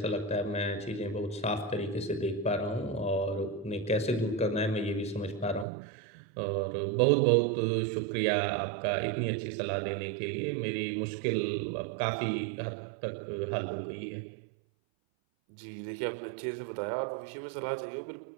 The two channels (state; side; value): drops out; left; at 5.7 s